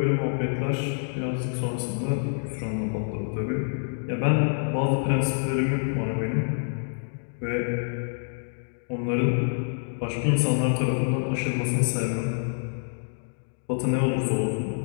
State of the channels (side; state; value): right; silent; digital silence